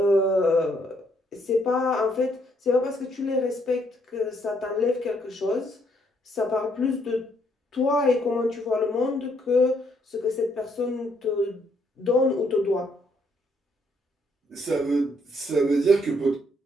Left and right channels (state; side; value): normal; both; correlation 0.71